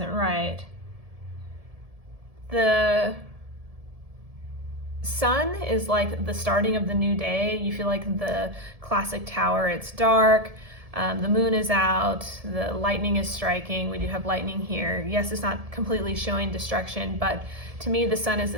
right. The sun is like the starting of the new day. You feel like the classic tower, it's dark. The moon is out, the lightning is striking. We do have lightning here. Yes, it's not completely showing destruction, but to me, the sun is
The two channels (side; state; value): left; late; 1.7 ms